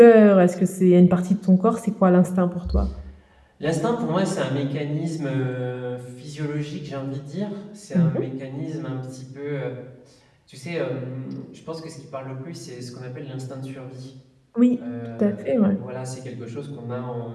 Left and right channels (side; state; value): both; identical; correlation 1.00